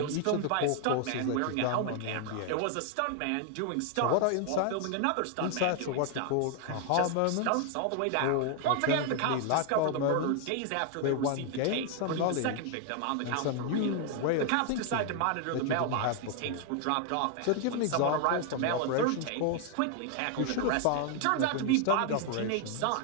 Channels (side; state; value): both; different; correlation 0.00